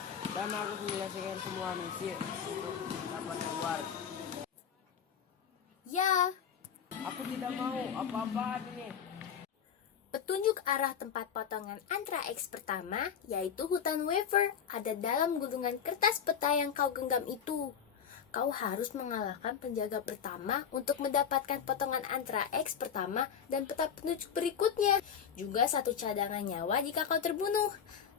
dan harus menyelesaikan semua misi untuk dapat keluar. Ya, Aku tidak mau apa-apaan ini. petunjuk arah tempat potongan antara X pertama, yaitu hutan wafer, ada dalam gulungan kertas peta yang kau genggam itu. Kau harus mengalahkan penjaga pertama untuk mendapatkan potongan antara X pertama dan peta petunjuk berikutnya. Juga 1 cadangan nyawa jika kau terbunuh.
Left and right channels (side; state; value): right; quieter; 7.8 dB